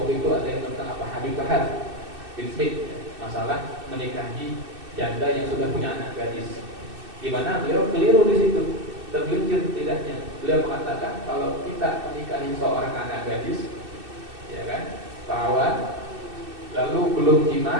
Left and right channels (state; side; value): late; left; 2.6 ms